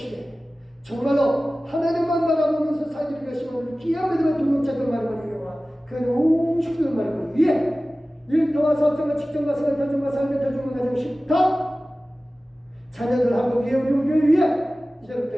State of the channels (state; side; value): normal; both; correlation 0.97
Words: 정말로 하나님만 바라보면서 살기를 결심하는 귀한 믿음의 동역자들 말을 이용하 그 온 식구들 말을 위해 일터와 사업장과 직장과 생활, 가정과 삶의 가정과 가정 식탁 자녀들하고 위에 우리 교회 위에